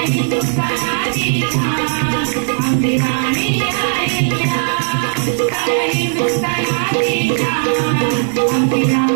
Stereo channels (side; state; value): left; silent; digital silence